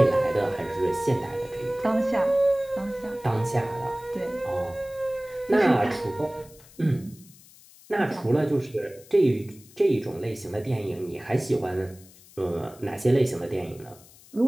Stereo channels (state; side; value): noise; left; hiss, 24 dB below the sound